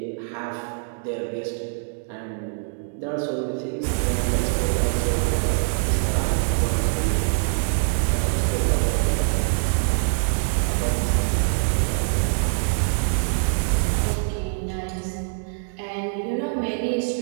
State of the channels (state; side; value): silent; left; digital silence